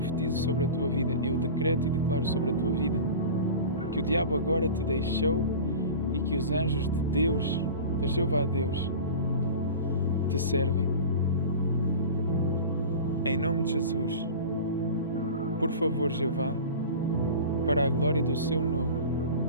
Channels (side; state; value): both; inverted; correlation -0.34